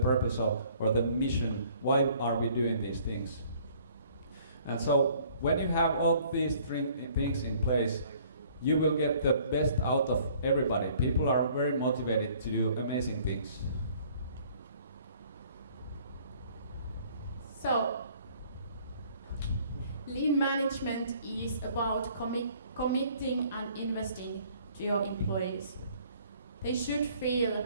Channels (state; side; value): inverted; both; correlation -0.57